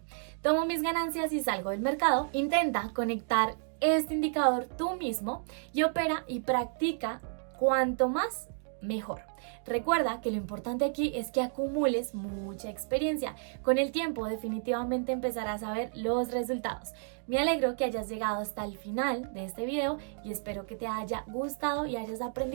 Tomo mis ganancias y salgo del mercado. Intenta conectar este indicador tú mismo y opera y practica cuanto más mejor. Recuerda que lo importante aquí es que acumules mucha experiencia. Con el tiempo definitivamente empezarás a ver los resultados. Me alegro que hayas llegado hasta el final de este video y espero que te haya gustado y hayas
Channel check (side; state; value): left; silent; 57 dB below the other